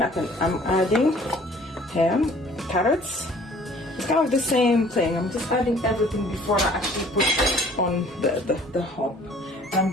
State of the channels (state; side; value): normal; both; correlation 0.53